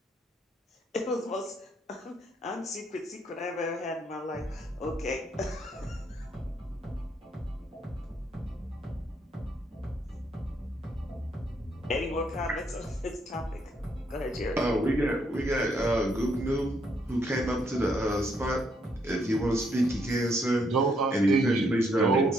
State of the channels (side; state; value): both; normal; correlation 0.73